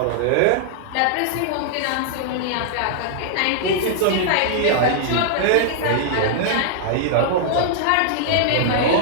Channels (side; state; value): both; different; correlation -0.01